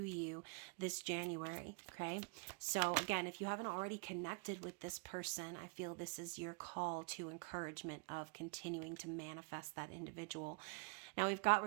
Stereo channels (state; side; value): quieter; left; 34.0 dB